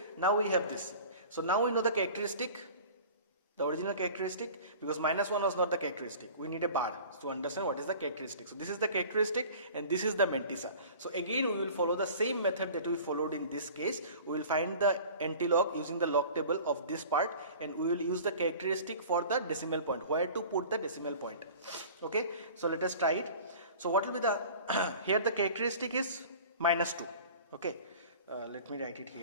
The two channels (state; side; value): inverted; both; correlation -0.42